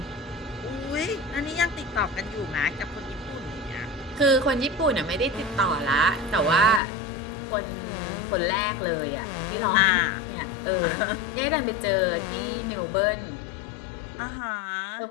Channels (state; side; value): drops out; right; at 6.8 s